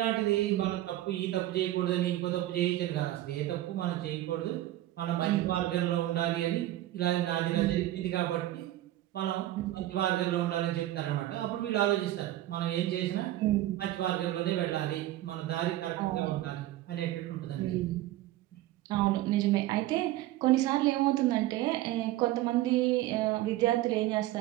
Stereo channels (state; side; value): quieter; left; 15.0 dB